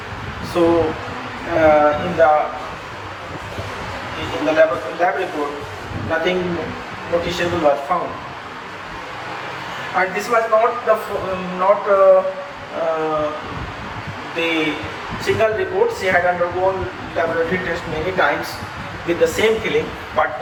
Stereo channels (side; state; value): both; identical; correlation 1.00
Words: So in the lab report, nothing noticeable was found. And this was not the single report. She had undergone laboratory test many times with the same feeling, but